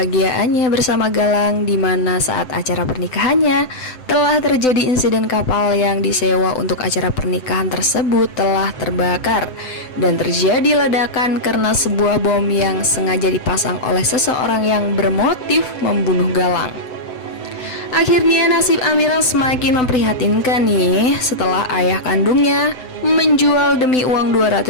bersama Galang, di mana saat acara pernikahannya telah terjadi insiden kapal yang disewa untuk acara pernikahan tersebut telah terbakar dan terjadi ledakan karena sebuah bom yang sengaja dipasang oleh seseorang yang bermotif membunuh Galang. Akhirnya nasib Amira semakin memprihatinkan nih setelah ayah kandungnya menjual demi uang 200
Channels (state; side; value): late; right; 7.9 ms